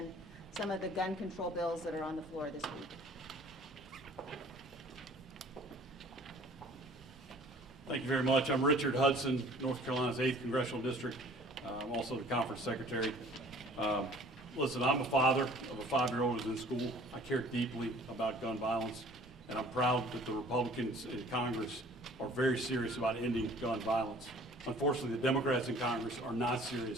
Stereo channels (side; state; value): both; normal; correlation 0.51